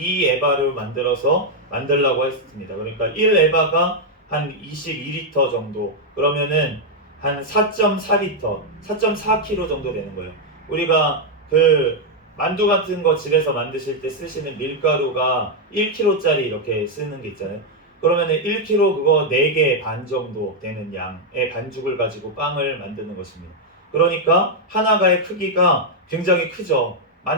에바를 만들라고 했습니다. 그러니까 1 에바가 한 22리터 정도, 그러면은 한 4.4리터, 4.4kg 정도 되는 거예요. 우리가 그 만두 같은 거 집에서 만드실 때 쓰시는 밀가루가 1kg짜리 이렇게 쓰는 게 있잖아요. 그러면은 1kg 그거 4개 반 정도 되는 양의 반죽을 가지고 빵을 만드는 것입니다. 그러니까 하나가의 크기가 굉장히 크죠.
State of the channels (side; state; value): both; normal; correlation 0.00